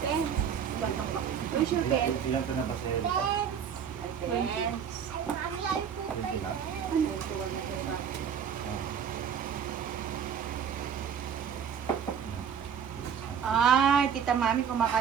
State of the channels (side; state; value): left; quieter; 7.8 dB